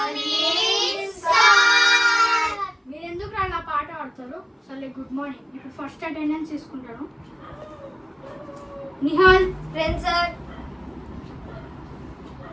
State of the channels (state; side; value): identical; both; correlation 1.00